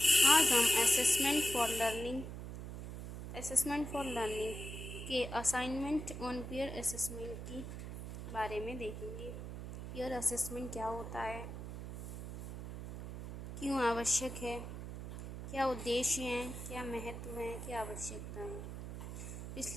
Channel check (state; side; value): noise; right; hum, 8 dB below the sound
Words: आज हम असेसमेंट फॉर लर्निंग के असाइनमेंट ऑन पीयर असेसमेंट की बारे में देखेंगे। पीयर असेसमेंट क्या होता है, क्यों आवश्यक है, क्या उद्देश्य हैं, क्या महत्व हैं, क्या आवश्यकताएं।